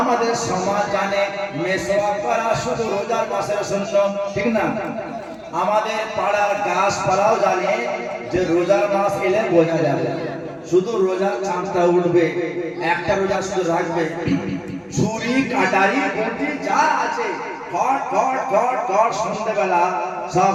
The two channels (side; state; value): both; identical; correlation 1.00